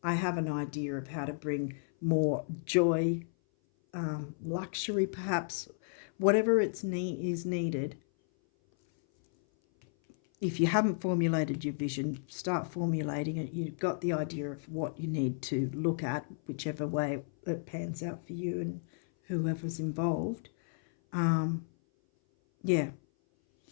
I have an idea of how to bring more joy, luxury perhaps, whatever is needed. If you haven't formulated your vision, start formulating it. You've got the idea of what you need to look at, whichever way it pans out for you and whoever's involved. Yeah,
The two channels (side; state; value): right; silent; 56 dB below the other